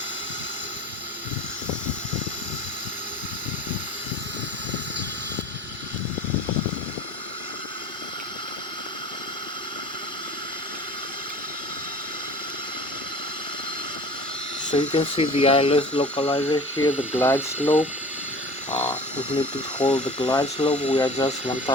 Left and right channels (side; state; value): both; normal; correlation 0.41